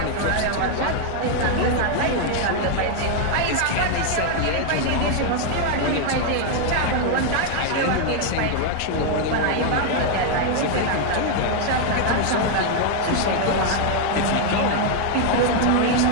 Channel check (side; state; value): both; different; correlation 0.00